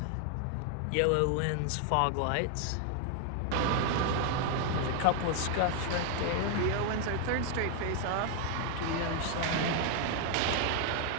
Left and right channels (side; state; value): both; different; correlation 0.00